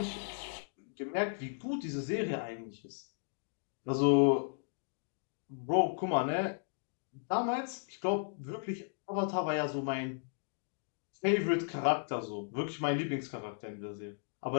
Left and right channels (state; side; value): silent; right; digital silence